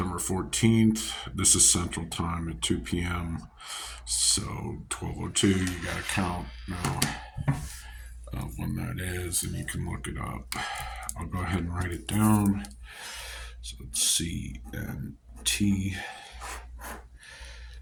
14th. This is Central Time at 2 p.m. So 12:02, you got to count now when that is, and you can look it up. I'll go ahead and write it down. So it's CNT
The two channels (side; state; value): both; identical; correlation 1.00